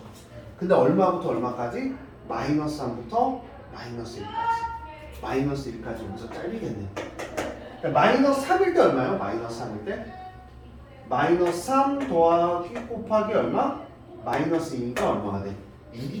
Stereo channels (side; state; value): both; identical; correlation 1.00